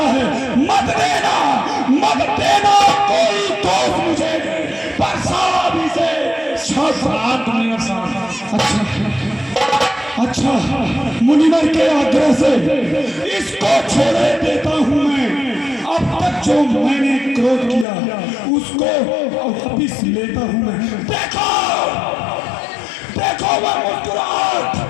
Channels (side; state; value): right; drops out; at 17.9 s